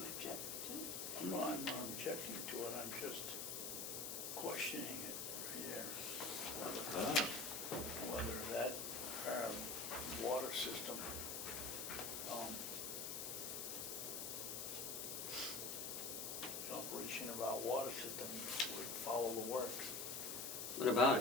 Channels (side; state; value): left; noise; hiss, 3 dB below the sound